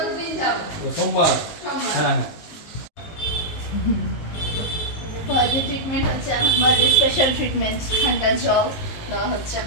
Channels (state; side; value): late; right; 19 ms